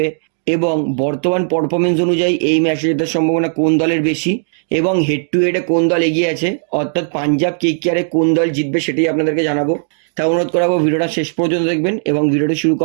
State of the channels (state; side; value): silent; left; digital silence